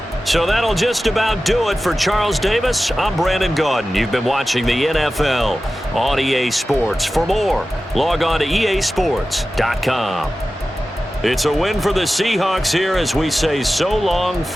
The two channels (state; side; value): normal; both; correlation 0.94